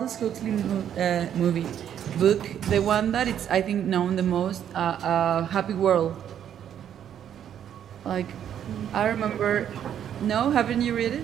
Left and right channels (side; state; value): left; quieter; 9.6 dB